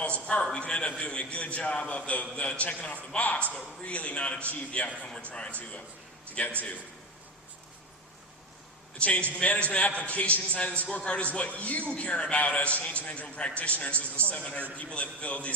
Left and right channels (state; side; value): normal; both; correlation 0.21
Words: apart. We can end up doing a good job of the checking off the box, but really not achieve the outcome we're trying to get to. The change management application side of the scorecard is what you care about as change management practitioners, as the 700 people that filled